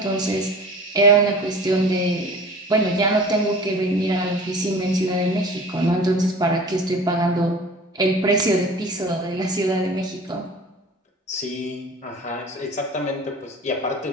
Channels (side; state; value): both; normal; correlation 0.41